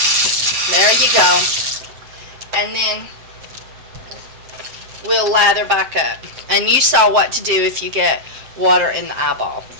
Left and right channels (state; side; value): late; left; 7.7 ms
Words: There you go. And then we'll lather back up. And you saw what to do if you get water in the eyeball.